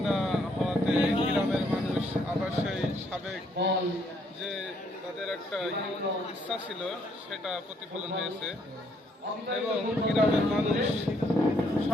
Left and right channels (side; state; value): both; normal; correlation 0.70